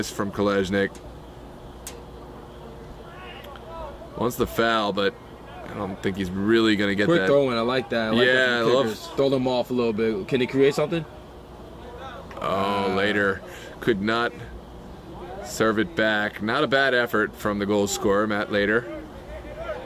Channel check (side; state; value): both; identical; correlation 1.00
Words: from Kolesnik? Wants the foul, but I don't think he's really going to get Quick that. throwing, I like that. I love. Throw them off a little bit. Can he create something? Later could not serve it back. Not a bad effort from the goal scorer, Matt Later.